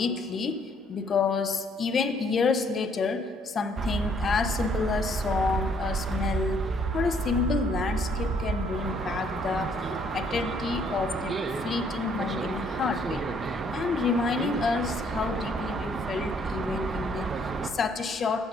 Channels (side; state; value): both; normal; correlation 0.65